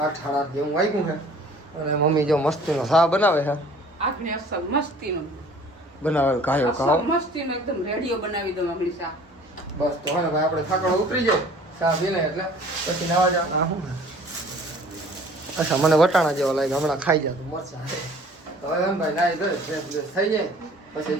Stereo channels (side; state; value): both; normal; correlation 0.51